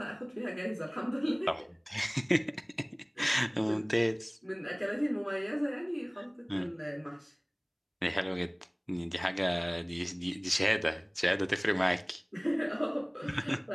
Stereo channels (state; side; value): identical; both; correlation 1.00